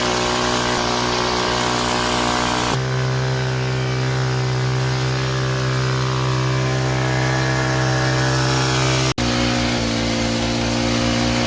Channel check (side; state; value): both; identical; correlation 1.00